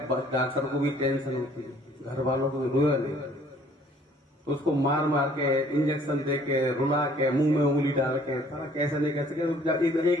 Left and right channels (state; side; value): normal; both; correlation 0.58